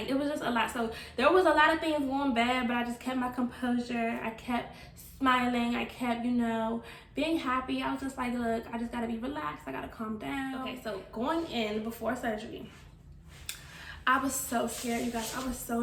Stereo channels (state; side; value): identical; both; correlation 1.00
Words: it was just a lot. So there was a lot of things going bad, but I just kept my composure. I kept smiling. I kept, you know, being happy. I was just like, look, I just gotta be relaxed. I gotta calm down. Okay, so going in before surgery, I was so scared, you guys. I was so